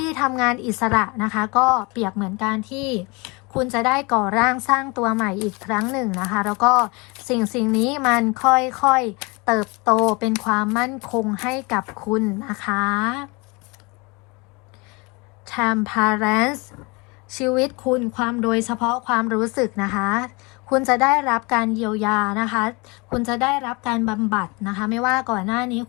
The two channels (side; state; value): right; quieter; 27.5 dB